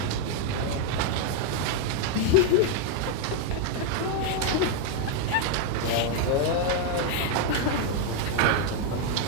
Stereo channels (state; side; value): different; both; correlation 0.00